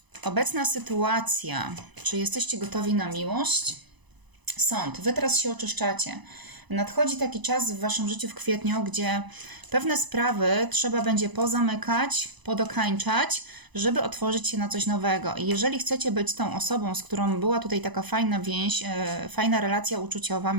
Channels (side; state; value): left; late; 1.0 ms